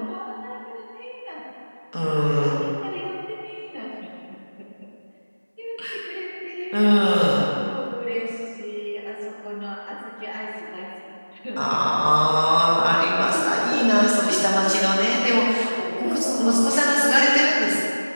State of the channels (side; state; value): both; inverted; correlation -1.00